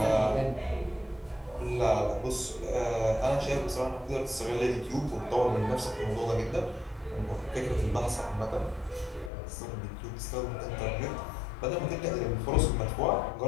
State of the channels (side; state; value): right; drops out; at 9.3 s